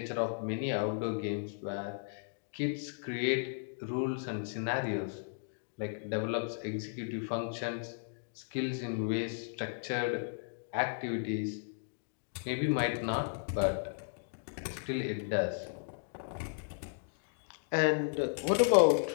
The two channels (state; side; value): silent; right; digital silence